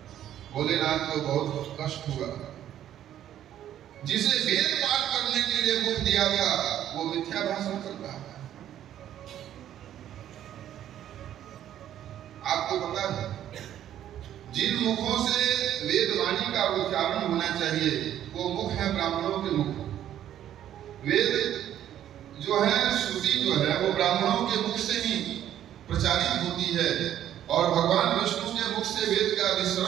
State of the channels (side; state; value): left; quieter; 11.2 dB